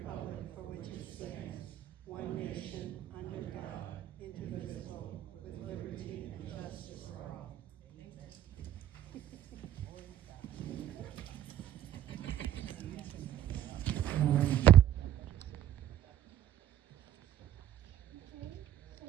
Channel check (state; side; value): quieter; left; 11.5 dB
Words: for which it stands, one nation, under God, indivisible, with liberty and justice for all. Okay, so